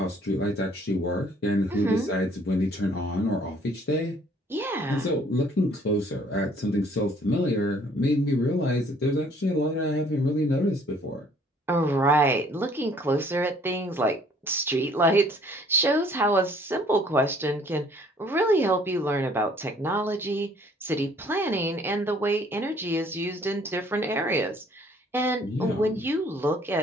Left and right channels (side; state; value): both; normal; correlation 0.59